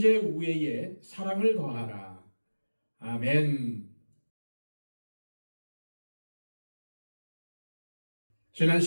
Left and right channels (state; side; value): inverted; both; correlation -1.00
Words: 우애에 사랑을 더하라. 아멘. 지난